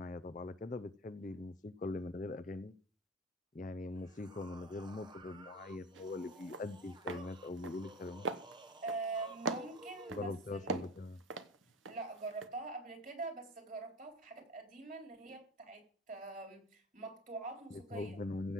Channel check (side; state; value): both; normal; correlation 0.31